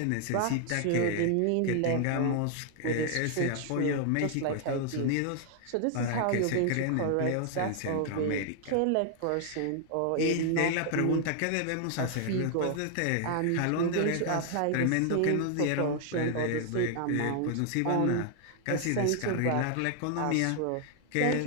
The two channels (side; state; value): both; different; correlation 0.00